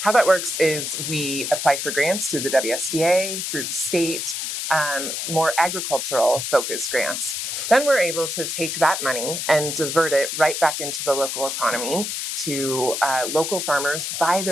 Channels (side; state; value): left; noise; hiss, 3 dB below the sound